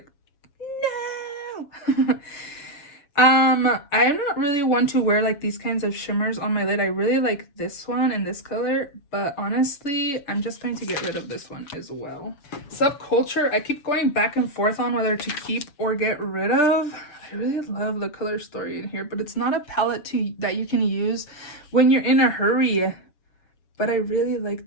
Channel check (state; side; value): late; right; 7.1 ms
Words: no! I'm not really one to wear like these kinds of shimmers on my lid. I really like this one and this color, but honestly, I'm just going to get rid of this one as well. Subculture, I keep going back and forth on whether to keep or get rid of. I really love the color story in here, but it's not a palette that you can use when you're in a hurry. But I really like